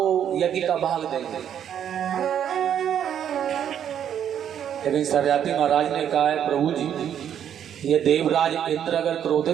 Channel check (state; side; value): quieter; left; 9.4 dB